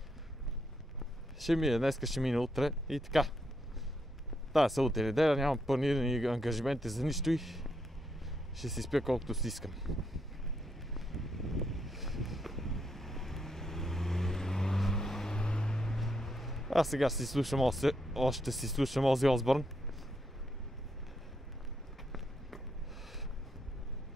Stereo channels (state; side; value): normal; both; correlation 0.79